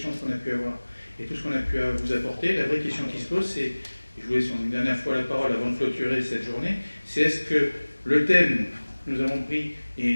qu'on a pu avoir et tout ce qu'on a pu vous apporter. La vraie question qui se pose, c'est, je vous laisse une dernière fois la parole avant de clôturer cette journée, c'est est-ce que le thème que nous avons pris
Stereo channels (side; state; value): both; inverted; correlation -1.00